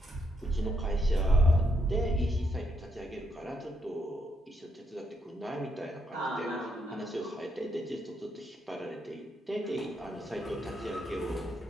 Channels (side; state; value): both; normal; correlation 0.79